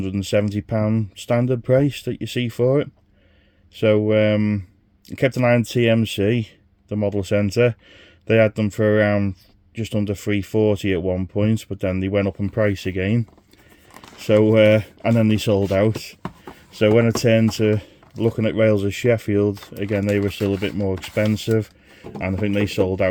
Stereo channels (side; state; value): both; identical; correlation 1.00